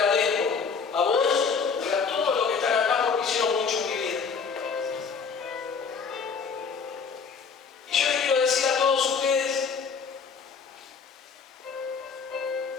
a vos y a todos los que están acá porque hicieron mucho en mi vida. Y yo les quiero decir a todos ustedes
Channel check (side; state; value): right; quieter; 5.6 dB